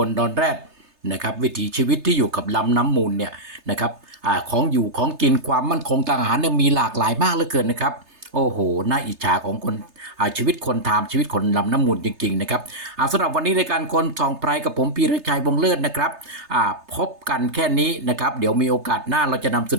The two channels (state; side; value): late; left; 3.3 ms